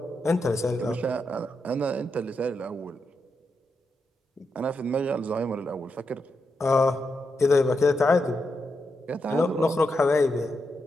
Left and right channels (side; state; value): both; normal; correlation 0.85